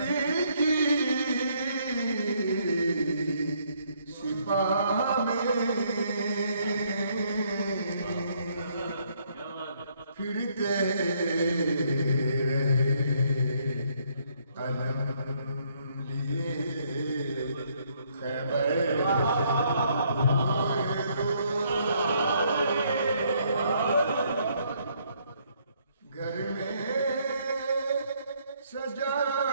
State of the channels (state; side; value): inverted; both; correlation -0.69